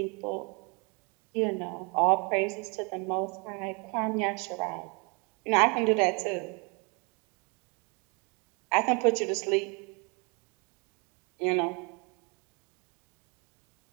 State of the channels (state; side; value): quieter; left; 32.5 dB